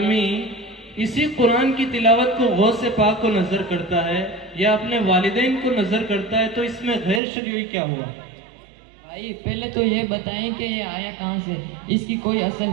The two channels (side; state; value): left; drops out; at 7.2 s